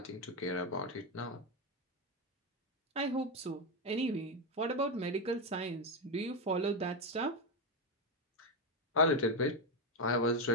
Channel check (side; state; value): both; normal; correlation 0.08